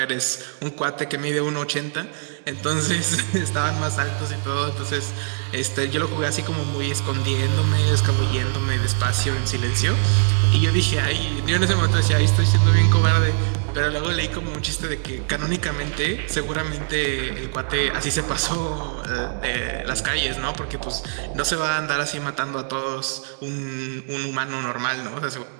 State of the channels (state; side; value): silent; left; 64 dB below the other